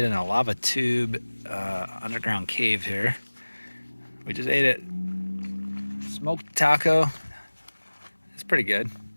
in a lava tube underground cave here. We just ate it. Smoked taco. It's pretty good.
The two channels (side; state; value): both; inverted; correlation -1.00